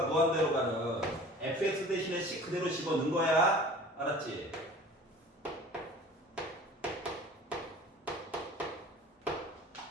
무한대로 가는 fx 대신에 c 그대로 집어넣은 거야. 알았지?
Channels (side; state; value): both; normal; correlation 0.44